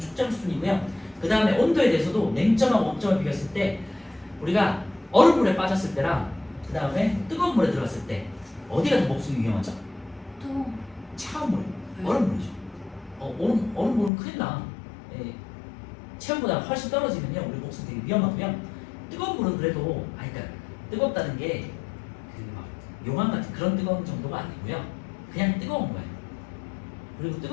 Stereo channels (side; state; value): right; drops out; at 14.1 s